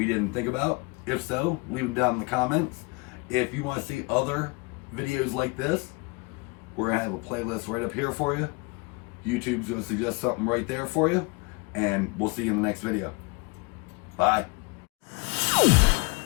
didn't think about. If so, leave them down in the comments. If you want to see other videos like this, we're going to have a playlist right up here for you. YouTube's going to suggest something right there for you. And we'll see you in the next video. Bye.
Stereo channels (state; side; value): quieter; right; 28.6 dB